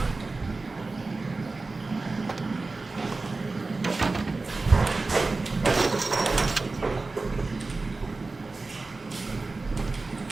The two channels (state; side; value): quieter; left; 3.6 dB